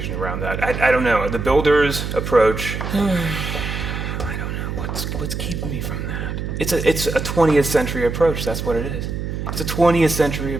around that? I don't know. The Builders approach, I don't know. What's keeping me from that? It's a 20th century approach. That's what it is. It's a 20th century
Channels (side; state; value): right; noise; hum, 4 dB below the sound